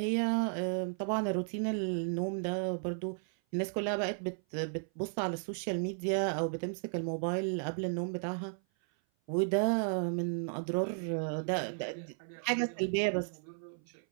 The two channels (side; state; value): left; silent; 55 dB below the other